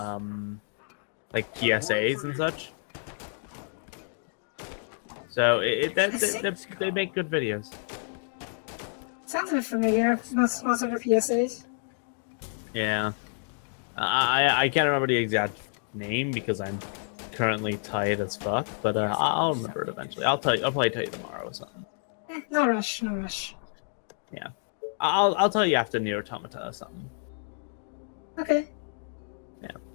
like PSAs and such. So they make good videos. Sounds a bit familiar. Most of the PSAs. Yeah. I can't remember the exact name because I'm currently tired as fuck, but I'll remember it eventually. I'll probably tell you tomorrow or something. No rush, no rush. Yeah. I'll tell you after Nier Automata or something. Okay. Yeah.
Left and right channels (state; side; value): silent; right; digital silence